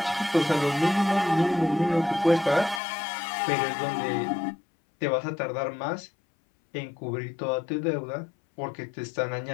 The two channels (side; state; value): right; drops out; at 2.8 s